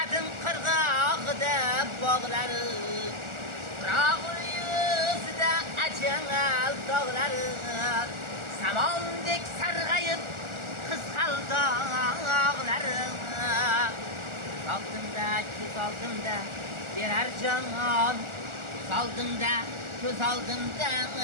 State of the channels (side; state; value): left; late; 1.4 ms